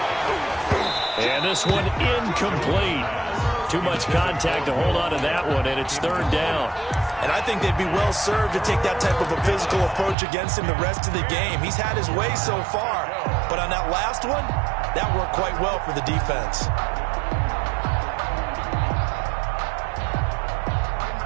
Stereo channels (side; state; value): left; drops out; at 10.2 s